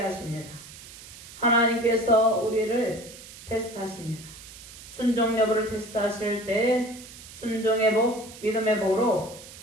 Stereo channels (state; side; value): noise; right; hiss, 16 dB below the sound